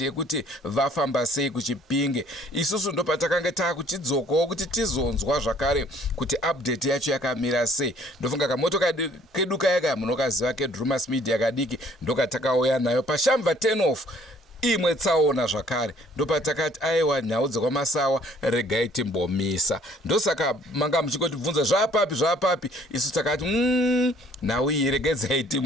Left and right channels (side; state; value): both; normal; correlation 0.59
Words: yekuti vafamba sei kuChipinge. Isusu ndo patakanga takuchidzokawo kuti tizonzwa zvakare kuti update yacho yakamira sei. Ndofunga kamotokari kedu kaya munokaziva keDrumas Media kadiki ndokatakauya nayo pashamva 10 off. Imwe tsaona zvakare ndopatakati aiwa nhau dzekwaMasawa regai timbomisa. Ndosaka manga muchingotibvunza zvapapi, isu takati nhau iyi regedzai